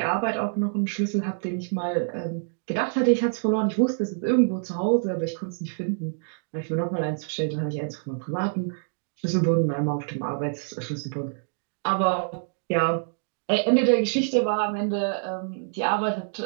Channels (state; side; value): silent; left; digital silence